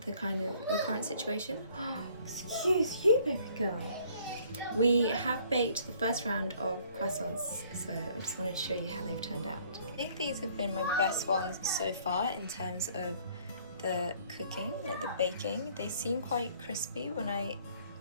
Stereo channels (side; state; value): both; inverted; correlation -0.59